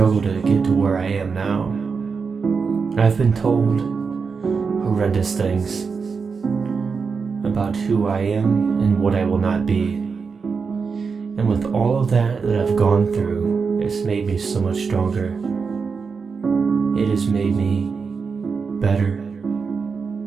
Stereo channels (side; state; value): left; quieter; 5.3 dB